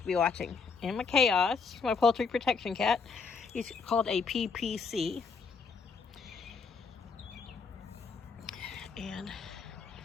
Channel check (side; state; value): right; quieter; 5.1 dB